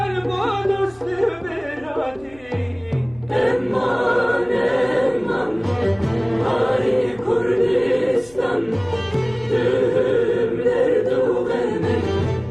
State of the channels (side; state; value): left; noise; hum, 26 dB below the sound